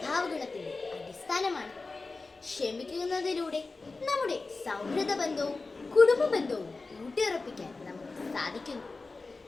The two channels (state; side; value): quieter; right; 3.7 dB